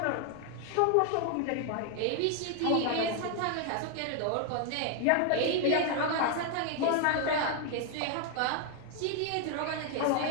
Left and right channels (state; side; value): different; both; correlation 0.00